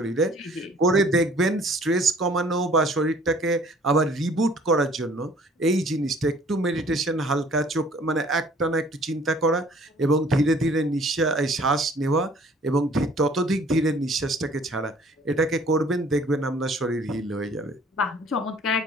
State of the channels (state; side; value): normal; both; correlation 0.55